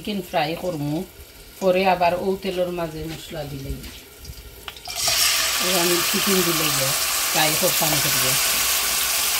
ফ্রাই করমু পরে আবার ও তেলের মাঝে মশলা দিলেই আমি চিকেন দিলে ফ্রাই করতাম করিয়া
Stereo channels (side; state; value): both; identical; correlation 1.00